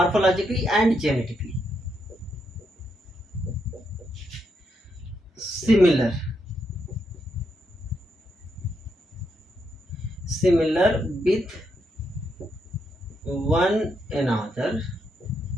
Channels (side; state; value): both; normal; correlation 0.80